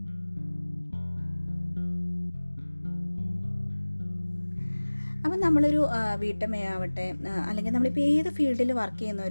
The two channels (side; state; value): both; inverted; correlation -1.00